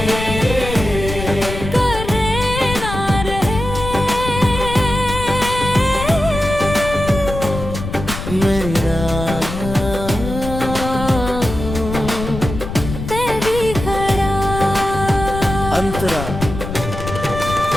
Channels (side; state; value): left; noise; rumble, 7 dB below the sound